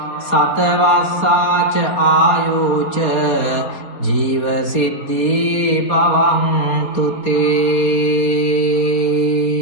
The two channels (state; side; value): late; right; 4.3 ms